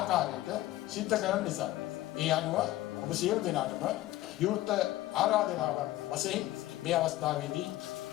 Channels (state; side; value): quieter; right; 15.9 dB